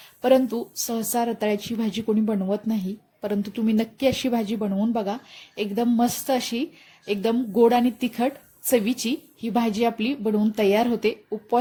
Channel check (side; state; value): both; identical; correlation 1.00